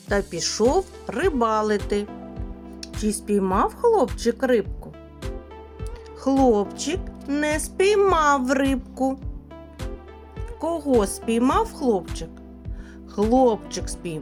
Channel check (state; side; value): identical; both; correlation 1.00